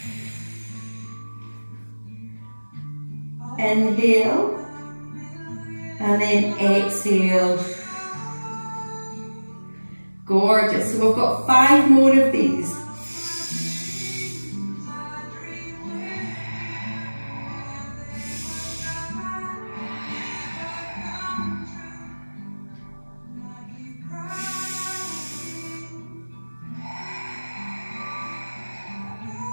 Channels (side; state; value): both; inverted; correlation -1.00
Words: Inhale. And then exhale. Gorgeous. So we've got 5 more of these.